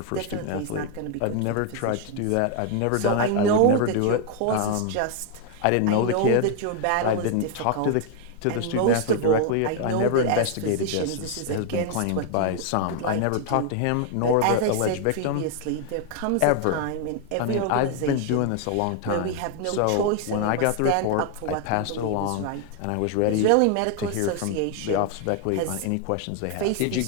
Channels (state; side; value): different; both; correlation 0.00